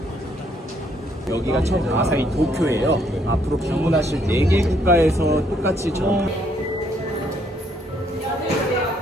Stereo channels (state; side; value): normal; both; correlation 0.69